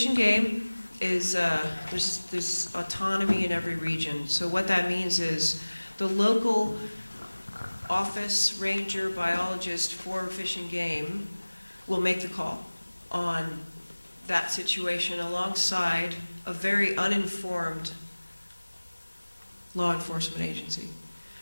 and Game is there's autonomy in every region. So what that means is the local office, ranger, biologist for Fish and Game will make the call on that situation alongside a very uninformed law enforcement agency.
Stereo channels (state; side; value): inverted; both; correlation -1.00